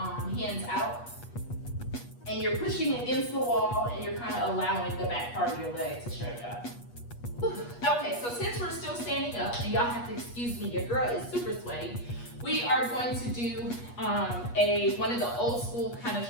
hands out, and you're pushing against the wall and you're kind of allowing the back part of your leg to stretch out. Okay, so since we're still standing up, and y'all have to excuse me, your girl is super sweaty, we are going to do one of the old school kind of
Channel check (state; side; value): late; right; 8.3 ms